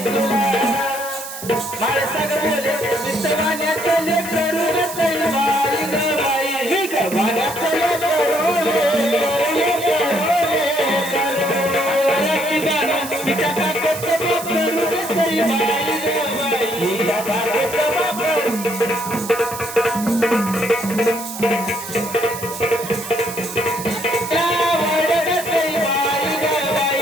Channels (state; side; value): noise; right; hiss, 10 dB below the sound